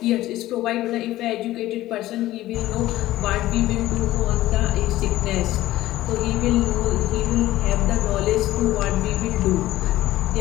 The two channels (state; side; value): quieter; right; 15.6 dB